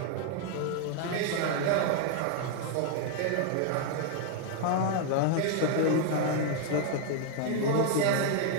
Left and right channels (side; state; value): both; different; correlation 0.00